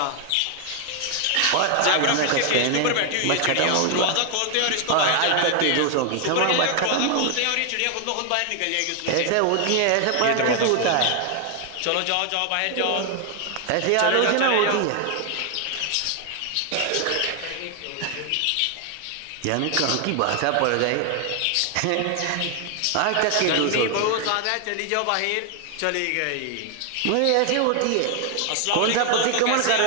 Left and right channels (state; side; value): different; both; correlation 0.00